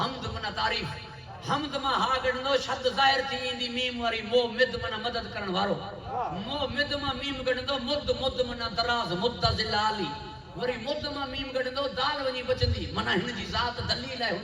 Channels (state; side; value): identical; both; correlation 1.00